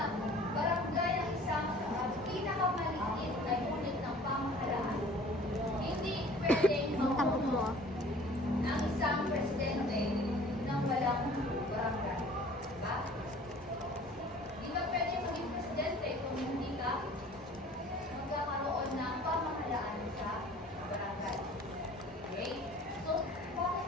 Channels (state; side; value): normal; both; correlation 0.49